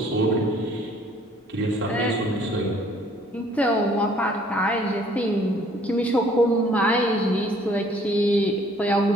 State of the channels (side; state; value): both; normal; correlation 0.59